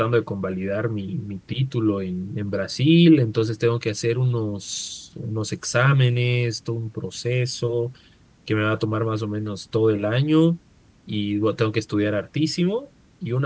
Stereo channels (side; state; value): both; identical; correlation 1.00